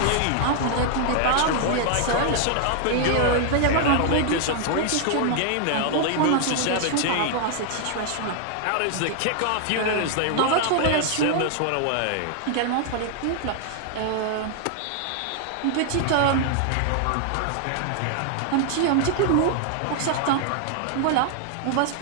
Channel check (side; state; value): both; different; correlation 0.00